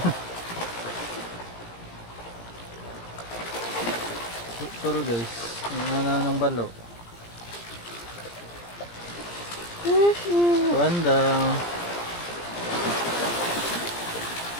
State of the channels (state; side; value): late; right; 17 ms